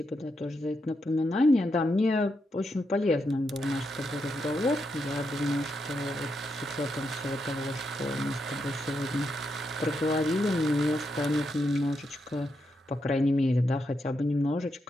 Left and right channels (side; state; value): both; normal; correlation 0.82